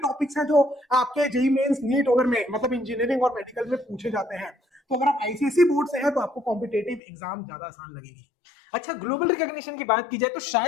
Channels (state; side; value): drops out; right; at 7.0 s